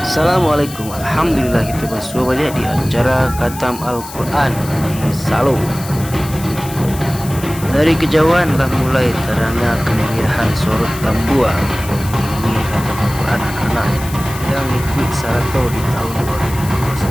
Alhamdulillah kita bersuara balik di acara Khatam Al-Quran di Salo. Dari kejauhan lah mulai terangnya kemeriahan sorot tambua ini Khatam Al-Quran anak-anak yang ikut Sarato di tahun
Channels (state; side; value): noise; left; hiss, 14 dB below the sound